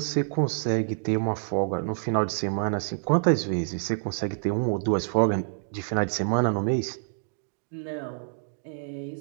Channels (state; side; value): silent; left; digital silence